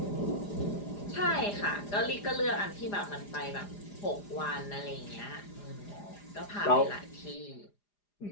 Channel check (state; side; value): late; right; 4.9 ms